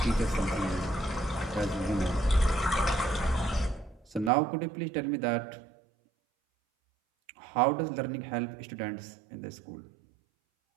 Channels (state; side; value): drops out; left; at 4.3 s